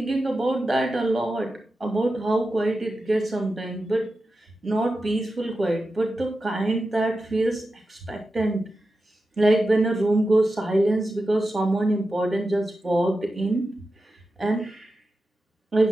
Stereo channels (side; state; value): both; normal; correlation 0.91